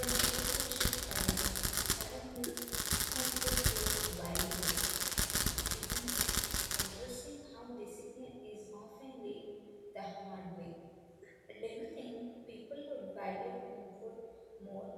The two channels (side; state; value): both; identical; correlation 1.00